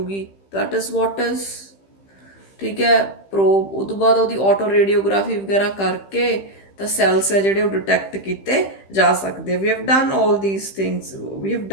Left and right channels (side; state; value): right; late; 15 ms